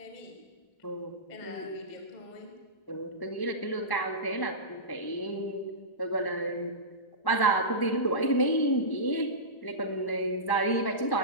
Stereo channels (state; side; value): late; right; 1.1 ms